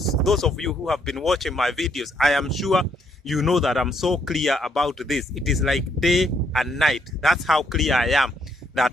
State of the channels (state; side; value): normal; both; correlation 0.72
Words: of you who have been watching my videos, I am sure you know that I'm so clear about this. It is like day and night. That's how clear I am